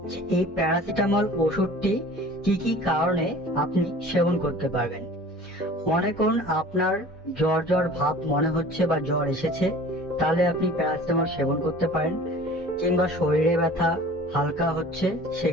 যে এই প্যারাসিটামল ওষুধটি কি কি কারণে আপনি সেবন করতে পারবেন। মনে করুন আপনার জ্বর জ্বর ভাব মনে হচ্ছে বা জ্বর এসেছে, তাহলে আপনি প্যারাসিটামল সেবন করতে পারেন। কিংবা শরীরে ব্যথা হালকা হচ্ছে,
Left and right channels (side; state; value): both; normal; correlation 0.44